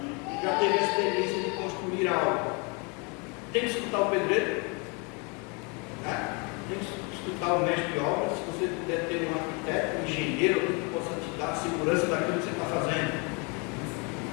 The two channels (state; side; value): quieter; right; 32.0 dB